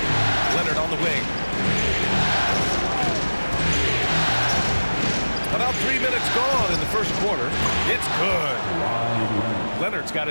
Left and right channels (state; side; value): inverted; both; correlation -1.00